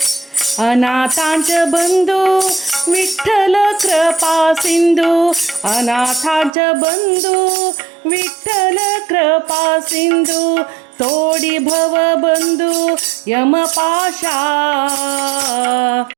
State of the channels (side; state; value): left; drops out; at 6.5 s